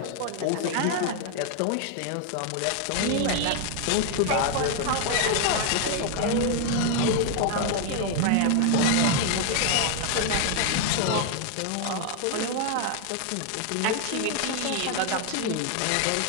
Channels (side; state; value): both; different; correlation 0.00